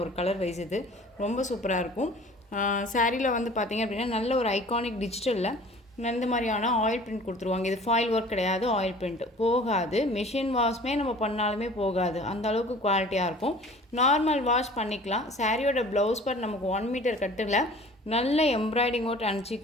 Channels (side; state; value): both; normal; correlation 0.46